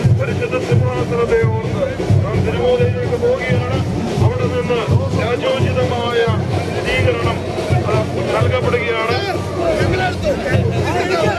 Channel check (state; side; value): identical; both; correlation 1.00